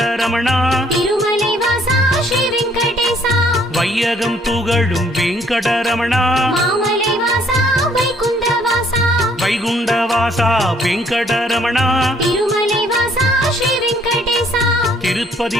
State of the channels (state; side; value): normal; both; correlation 0.64